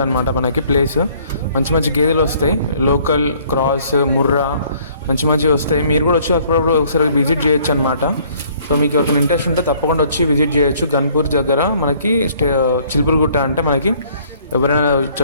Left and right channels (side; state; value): both; inverted; correlation -0.60